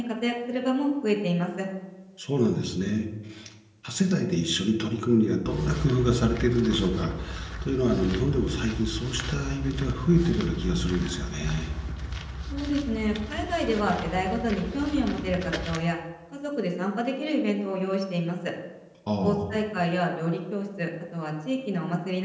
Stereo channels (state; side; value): identical; both; correlation 1.00